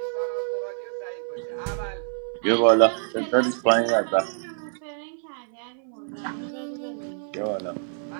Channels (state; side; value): silent; left; 61 dB below the other